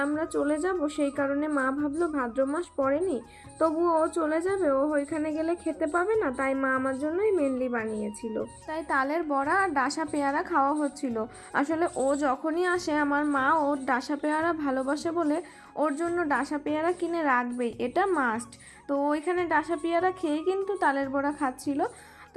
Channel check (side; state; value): both; identical; correlation 1.00